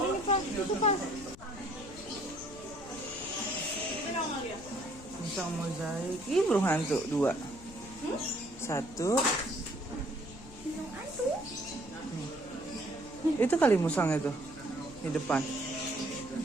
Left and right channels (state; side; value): noise; left; rumble, 18 dB below the sound